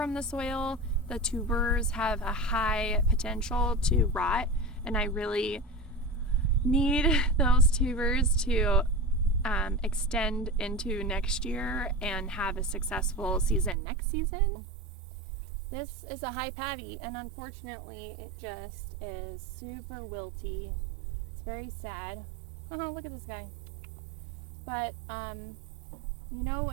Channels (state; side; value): drops out; left; at 13.8 s